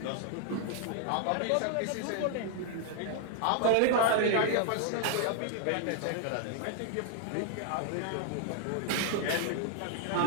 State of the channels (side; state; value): both; different; correlation 0.00